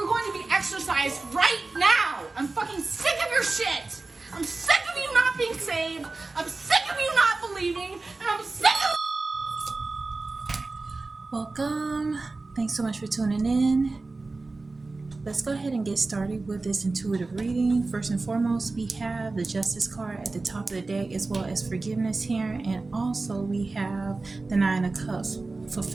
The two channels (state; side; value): quieter; left; 3.5 dB